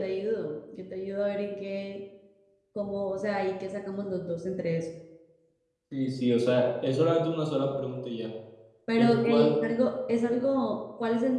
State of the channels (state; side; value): identical; both; correlation 1.00